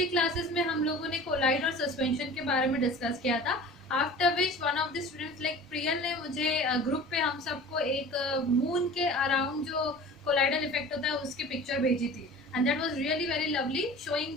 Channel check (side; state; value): both; normal; correlation 0.40